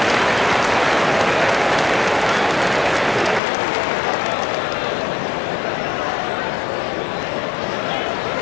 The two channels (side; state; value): right; drops out; at 3.4 s